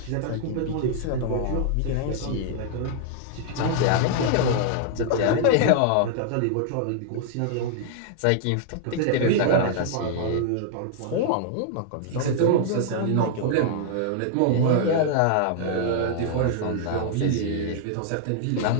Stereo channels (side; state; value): both; different; correlation -0.01